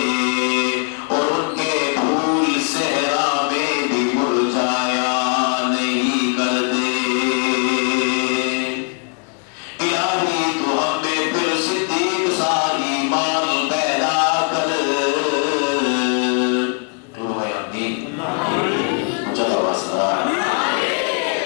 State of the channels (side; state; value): right; quieter; 39.5 dB